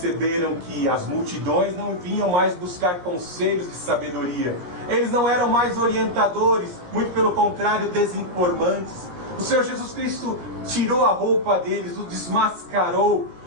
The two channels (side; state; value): left; late; 17 ms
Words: que as multidões não vinham mais buscar conselhos de sabedoria. Eles não eram mais orientadores, muito pelo contrário, desinformantes. O Senhor Jesus Cristo tirou a roupa deles, o desmascarou,